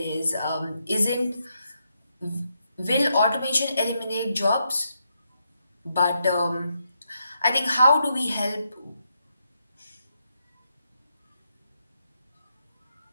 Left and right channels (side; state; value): both; inverted; correlation -0.80